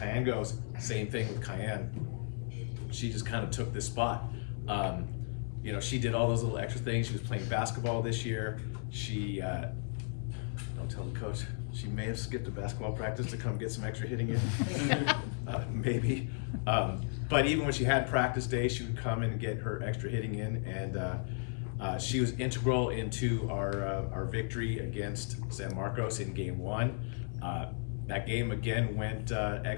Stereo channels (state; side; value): silent; right; 55 dB below the other